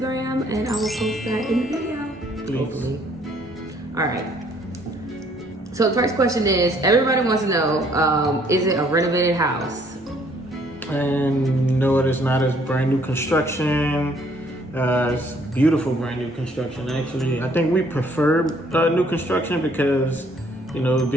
and I will post that in the video. Please. Hopefully. All right. So the first question is, everybody wants to know, is it a renovated house? And no, it is not. It's brand new construction. It's beautiful brand new construction, actually. I think we prefer new construction because, you know,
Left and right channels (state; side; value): normal; both; correlation 0.63